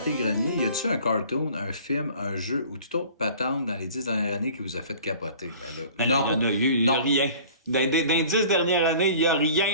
y a-tu un cartoon, un film, un jeu ou toute autre patente dans les 10 dernières années qui vous a fait capoter? Ben là, non, il y a rien. Dans les 10 dernières années, il n'y a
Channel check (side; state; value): both; inverted; correlation -0.47